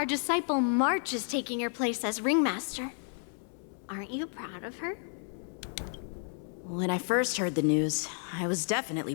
disciple March is taking your place as ringmaster. Aren't you proud of her? When I first heard the news, I was definitely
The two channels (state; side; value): silent; right; 57 dB below the other